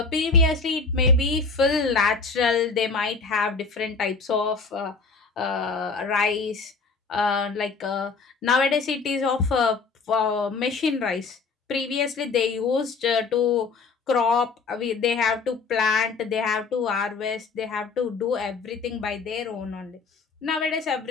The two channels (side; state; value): right; quieter; 4.5 dB